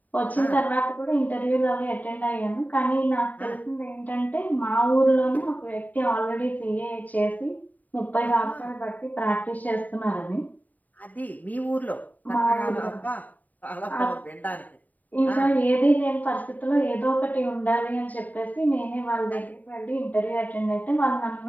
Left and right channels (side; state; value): right; late; 0.078 ms